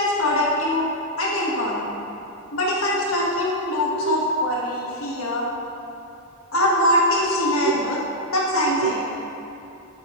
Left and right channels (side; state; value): both; normal; correlation -0.05